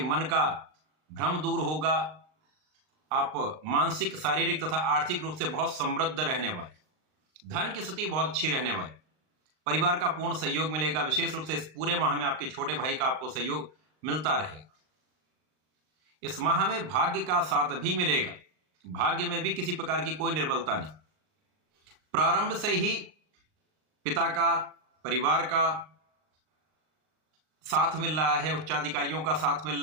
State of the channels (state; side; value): late; left; 39 ms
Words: मन का भ्रम दूर होगा, आप मानसिक, शारीरिक तथा आर्थिक रूप से बहुत समृद्ध रहने वाले, धन की स्थिति बहुत अच्छी रहने वाली, परिवार का पूर्ण सहयोग मिलेगा। विशेष रूप से इस पूरे माह में आपके छोटे भाई का आपको सहयोग मिलता रहेगा। इस माह में भाग्य का साथ भी मिलेगा, भाग्य में भी किसी प्रकार की कोई निर्बलता नहीं। प्रारंभ से ही पिता का, परिवार का साथ मिल रहा है, उच्चाधिकारियों का साथ